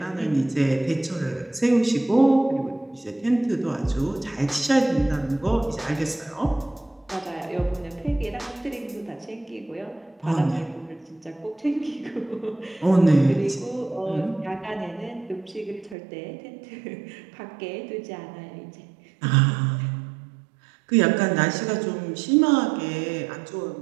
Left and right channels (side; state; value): left; drops out; at 16.0 s